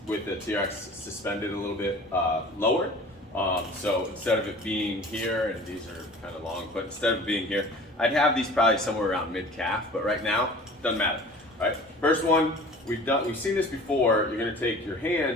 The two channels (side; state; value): both; normal; correlation 0.44